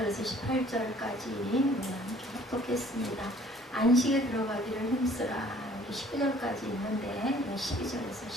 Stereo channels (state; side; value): normal; both; correlation 0.55